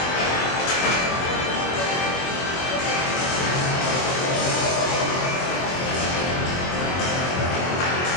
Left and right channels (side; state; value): right; late; 23 ms